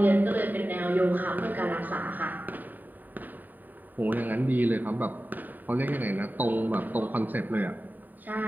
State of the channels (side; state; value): left; late; 0.088 ms